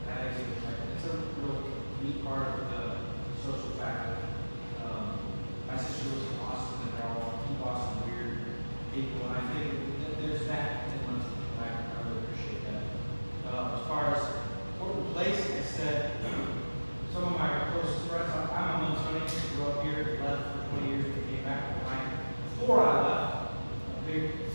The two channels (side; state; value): both; inverted; correlation -1.00